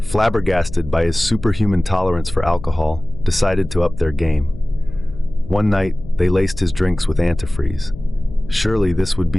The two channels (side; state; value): left; noise; hum, 14 dB below the sound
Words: flabbergasted by his superhuman tolerance for alcohol, decided to up their game. One night, they laced his drinks with antifreeze. Surely this would